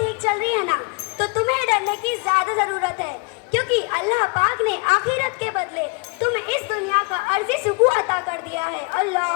چل رہی ہے نا، تو تمہیں ڈرنے کی زیادہ ضرورت ہے، کیونکہ اللہ پاک نے آخرت کے بدلے تمہیں اس دنیا کا عرضی سکون عطا کر دیا ہے۔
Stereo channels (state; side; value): quieter; right; 31.3 dB